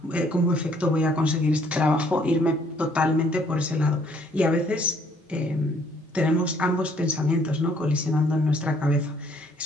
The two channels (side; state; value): both; normal; correlation 0.63